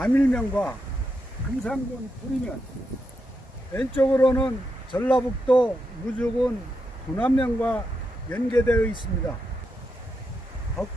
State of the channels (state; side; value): normal; both; correlation 0.84